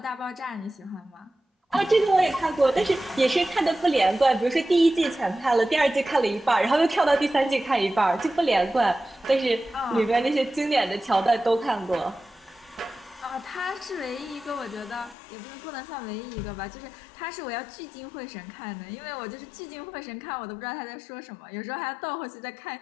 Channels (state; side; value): drops out; right; at 15.2 s